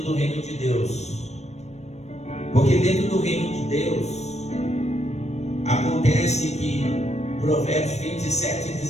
do reino de Deus. Porque dentro do reino de Deus acontece que Provérbios 27 e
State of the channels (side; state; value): right; late; 0.32 ms